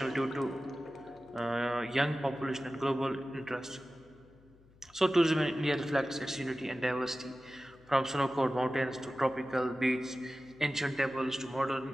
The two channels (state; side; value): noise; left; hum, 27 dB below the sound